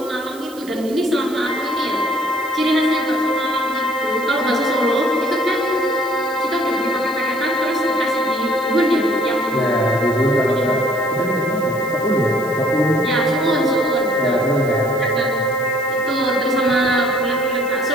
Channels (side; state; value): right; noise; hiss, 19 dB below the sound